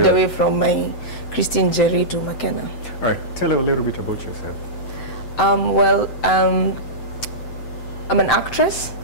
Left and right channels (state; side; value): late; right; 7.8 ms